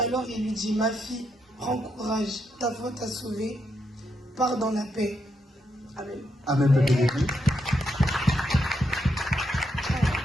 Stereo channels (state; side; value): normal; both; correlation 0.80